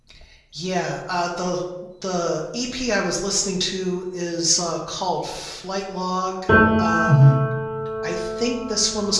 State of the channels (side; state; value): both; identical; correlation 1.00